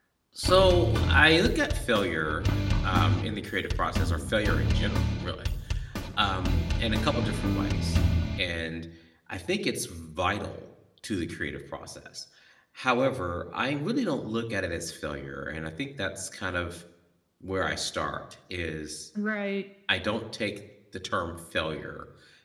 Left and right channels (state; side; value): identical; both; correlation 1.00